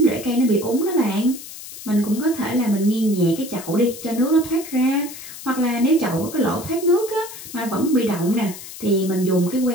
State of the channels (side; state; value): left; noise; hiss, 13 dB below the sound